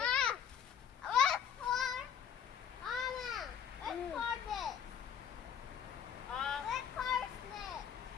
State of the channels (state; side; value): quieter; right; 8.2 dB